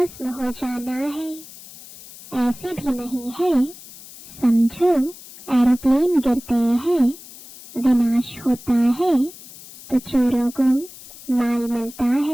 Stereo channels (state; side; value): noise; left; hiss, 18 dB below the sound